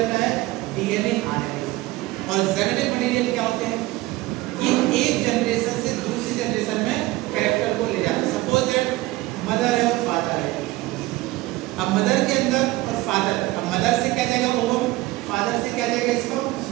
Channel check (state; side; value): quieter; left; 19.3 dB